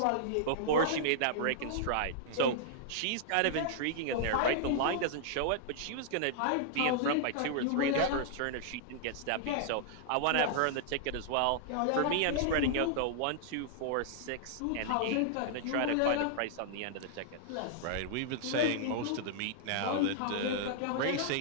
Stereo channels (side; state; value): both; different; correlation -0.01